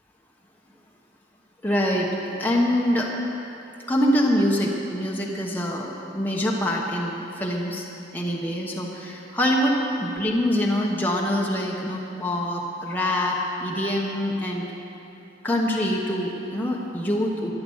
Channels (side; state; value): both; normal; correlation 0.68